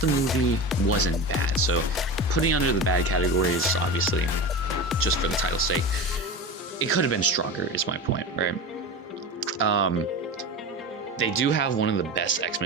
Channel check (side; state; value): both; normal; correlation 0.27